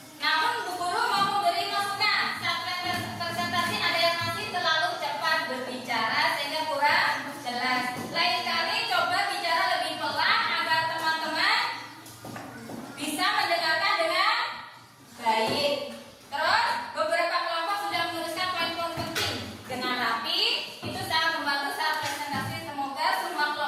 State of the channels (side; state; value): both; identical; correlation 1.00